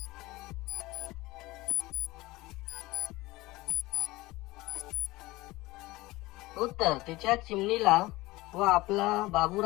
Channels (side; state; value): right; quieter; 20.0 dB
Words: उत्तर, तिच्या चिमणीला व आपला